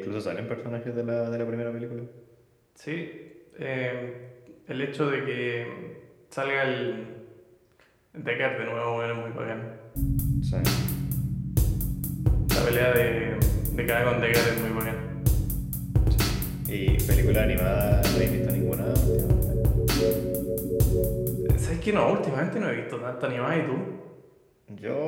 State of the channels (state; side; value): identical; both; correlation 1.00